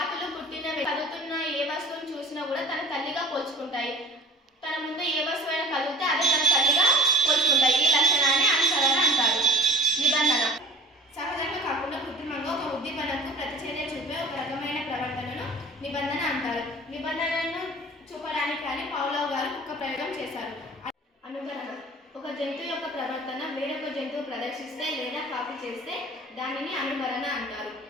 పుట్టిన కదులుతున్న ఏ వస్తువును చూసినా కూడా తన తల్లిగా పోల్చుకుంటాయి. తన ముందు ఏ వస్తువైనా కదిలితే అదే తన తల్లిగా పోల్చుకుంటాయి. ఈ లక్షణాన్ని అనుసరణ అంటారు. నిబంధన సహజంగా కాకుండా కృత్రిమంగా ఒక ఉద్దీపనకు ప్రతిచర్య చూపే ఒక రకమైన ప్రవర్తనను నిబంధన అంటారు. నిబంధనను చూపడానికి కానీ పౌలవ్ గారు కుక్క ప్రయోగం చేశారు. అనుకరణ ఒక జంతువు యొక్క ప్రవర్తన వేరొక జంతువు ప్రదర్శిస్తే లేదా కాపీ చేస్తే దానిని అనుకరణ అంటారు.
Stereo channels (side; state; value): both; normal; correlation 0.43